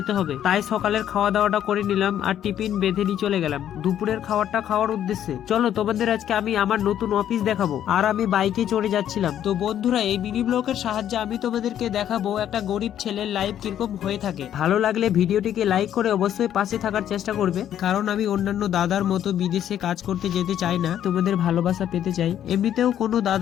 হবে, তাই সকালের খাওয়া দাওয়াটা করে নিলাম আর টিফিন বেঁধে নিয়ে চলে গেলাম দুপুরের খাবারটা খাওয়ার উদ্দেশ্যে। চলো তোমাদের আজকে আমি আমার নতুন অফিস দেখাবো। আর আমি বাইকে চড়ে যাচ্ছিলাম। তো বন্ধুরা এই মিনি ব্লগের সাহায্যে আমি তোমাদেরকে দেখাবো একটা গরিব ছেলের লাইফ কিরকম হয়ে থাকে। ভালো লাগলে ভিডিওটিকে লাইক করে অবশ্যই পাশে থাকার চেষ্টা করবে, কারণ আমি অন্যান্য দাদার মতো বিদেশে কাজ করতে যেতে চাই না, তোমাদের ভালোবাসা পেতে চাই। এমনিতেও কোনো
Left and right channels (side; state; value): right; quieter; 10.6 dB